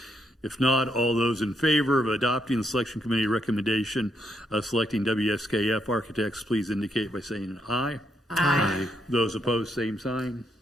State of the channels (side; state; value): both; normal; correlation 0.77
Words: If not, all those in favor of adopting the selection committee recommendation of selecting WSKF Architects, please indicate by saying aye. Aye. Those opposed, same sign.